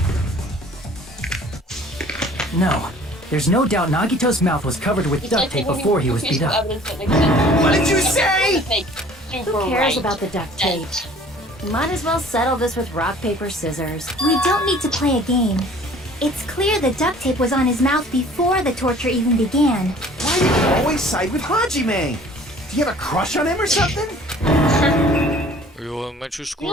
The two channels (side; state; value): both; normal; correlation 0.51